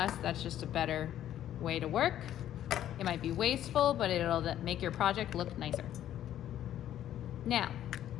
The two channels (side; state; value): right; quieter; 11.6 dB